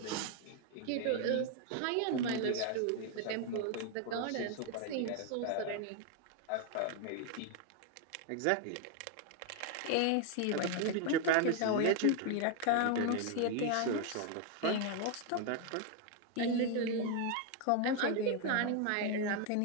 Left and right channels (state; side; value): different; both; correlation 0.01